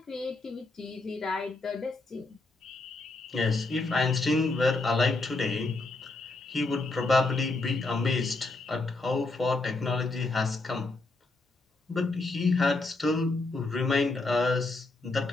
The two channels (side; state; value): right; quieter; 3.3 dB